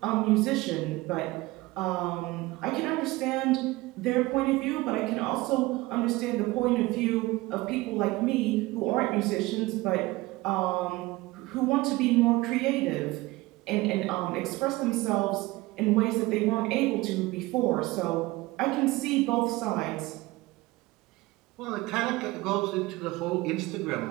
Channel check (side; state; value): left; quieter; 20.3 dB